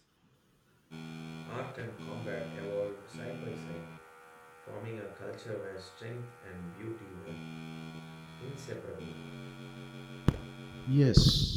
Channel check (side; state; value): both; identical; correlation 1.00